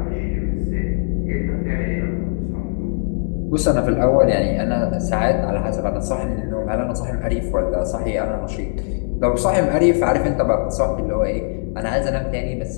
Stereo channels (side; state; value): right; silent; 65 dB below the other